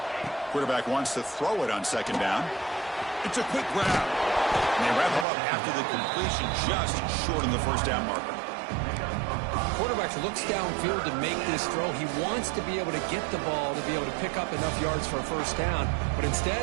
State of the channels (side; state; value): left; drops out; at 5.2 s